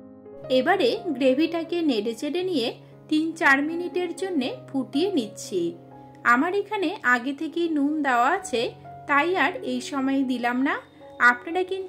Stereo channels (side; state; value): both; identical; correlation 1.00